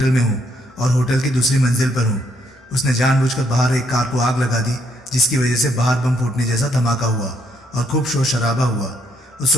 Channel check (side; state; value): both; normal; correlation 0.72